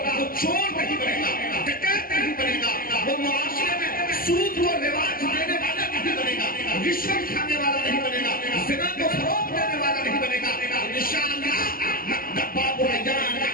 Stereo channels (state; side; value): late; right; 0.42 ms